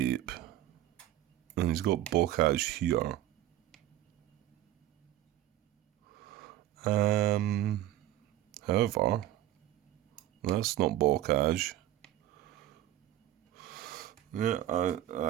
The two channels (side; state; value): left; quieter; 13.5 dB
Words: And he's got blockage here. However, that's not blockage. Yeah,